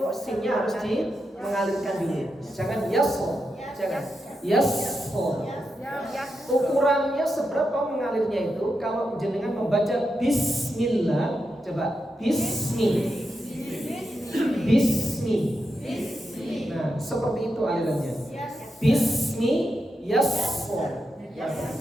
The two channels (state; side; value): normal; both; correlation 0.86